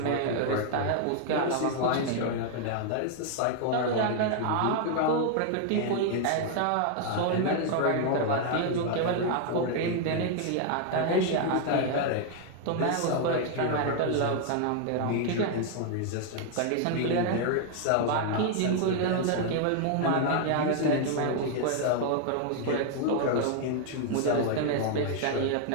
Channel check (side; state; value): both; different; correlation 0.00